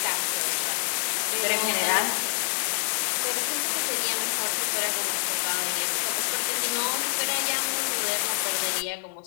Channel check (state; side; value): silent; right; 60 dB below the other